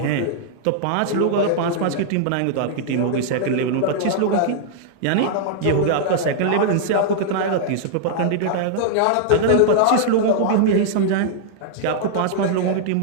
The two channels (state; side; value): different; both; correlation -0.01